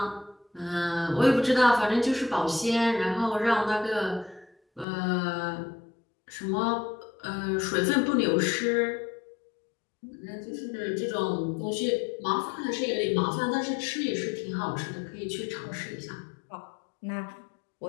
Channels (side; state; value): right; drops out; at 4.9 s